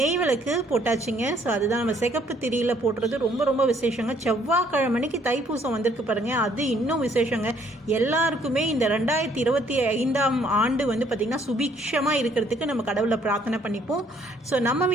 விளக்கு போட்டாச்சுங்க. ஸோ அதுதான் நம்ம சிகப்பு திரியில் போடுறது ரொம்ப ரொம்ப விசேஷங்க. செவ்வாய்க்கிழமைக்கு தைப்பூசம் வந்திருக்கு பாருங்கள், அது இன்னும் விசேஷங்க. எல்லாருக்குமே இந்த 2025ஆம் ஆண்டு பார்த்திங்கன்னா சுபிக்ஷமாக இருக்கிறதுக்கு நம்ம கடவுளை பிரார்த்தனை பண்ணிப்போம். ஸோ நம்ம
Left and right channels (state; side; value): normal; both; correlation 0.64